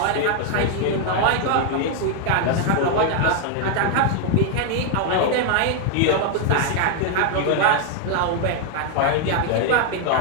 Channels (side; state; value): both; different; correlation 0.01